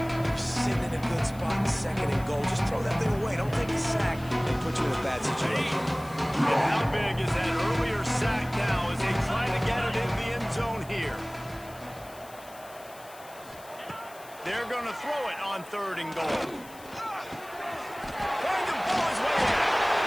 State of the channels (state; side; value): noise; left; hiss, 21 dB below the sound